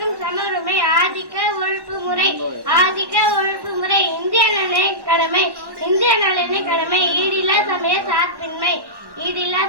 சமருமை. ஆதிக்க ஒழிப்பு முறை. ஆதிக்க ஒழிப்பு முறை. இந்திய நலனை கடமை. இந்திய நலனை கடமை. ஈடில்லா சமய சார்பின்மை. ஈடில்லா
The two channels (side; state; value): left; late; 1.1 ms